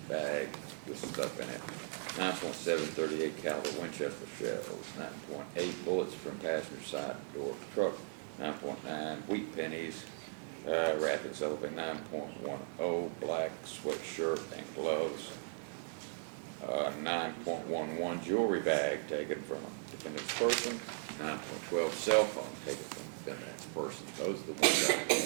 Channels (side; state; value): left; silent; digital silence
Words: bag with stuff in it, 9.7 38 caliber Winchester shells, 9.8 bullets from passenger side door of the truck, 9.9 wheat pennies wrapped in cellophane, 9.10 black sweatshirt and gloves, 9.11 jewelry bag taken from defendant's person, 9.12 cell phone taken from defendant's person. Those are the ones I